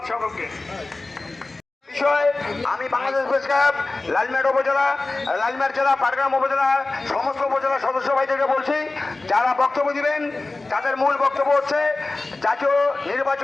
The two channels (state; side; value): quieter; right; 3.3 dB